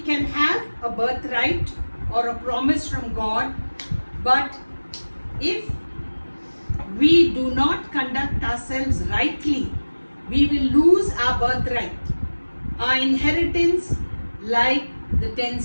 can have a birthright or a promise from God, but if we do not conduct ourselves rightly, we will lose our birthright, our inheritance, like the 10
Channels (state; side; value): inverted; both; correlation -1.00